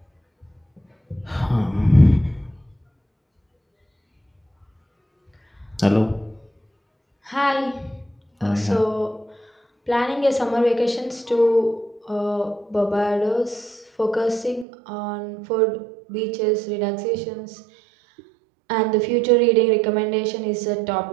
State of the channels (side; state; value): left; drops out; at 14.7 s